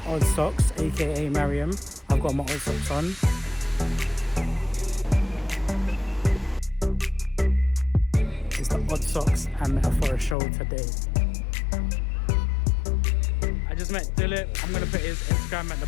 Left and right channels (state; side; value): drops out; right; at 10.4 s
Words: Oddsocks, aka Mariam. I've got my Oddsocks on. It's the Oddsocks and Metaphorest show today. I just met Dilip. I'm gonna put his Instagram at